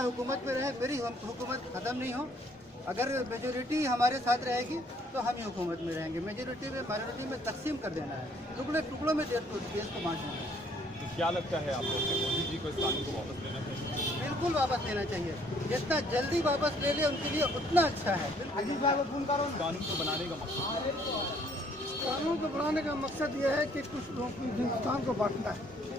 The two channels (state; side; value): normal; both; correlation 0.63